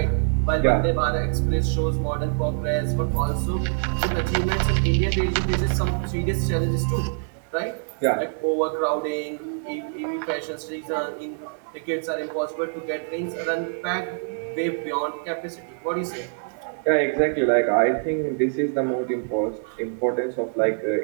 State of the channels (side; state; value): left; silent; 62 dB below the other